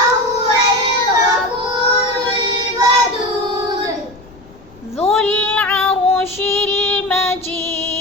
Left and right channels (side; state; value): left; noise; rumble, 24 dB below the sound